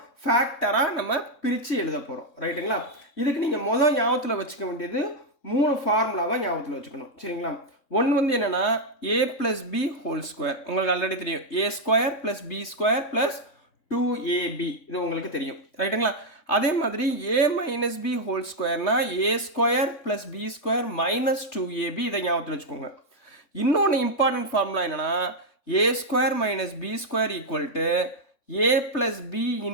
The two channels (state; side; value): late; right; 3.6 ms